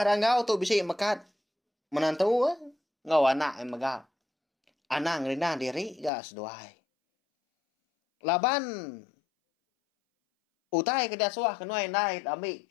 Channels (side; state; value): right; drops out; at 6.1 s